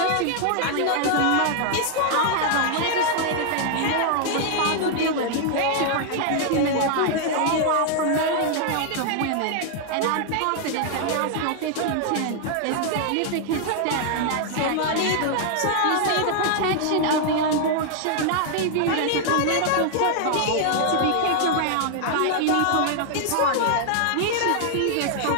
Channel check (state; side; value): different; both; correlation 0.00